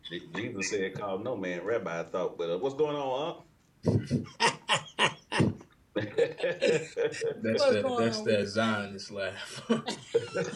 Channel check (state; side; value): identical; both; correlation 1.00